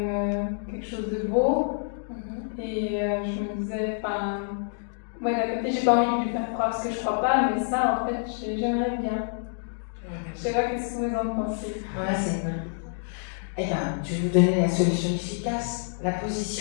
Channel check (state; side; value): silent; right; digital silence